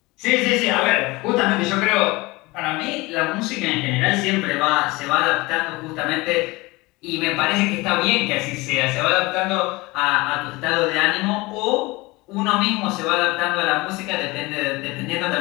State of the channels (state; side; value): quieter; right; 22.6 dB